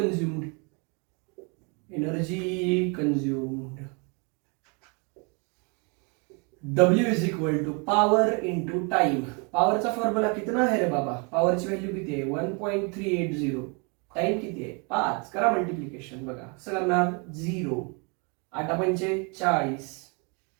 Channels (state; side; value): quieter; left; 33.5 dB